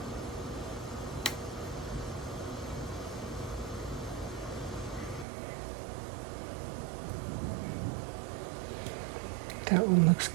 That one looks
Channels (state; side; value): drops out; left; at 5.2 s